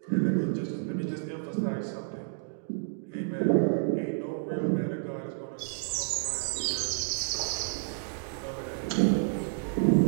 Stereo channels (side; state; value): left; silent; digital silence